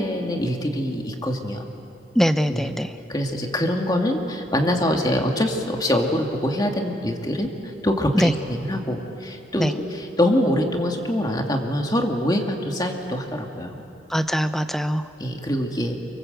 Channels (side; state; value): both; normal; correlation 0.76